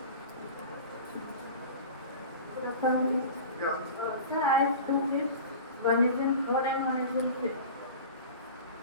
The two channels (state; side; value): inverted; both; correlation -0.35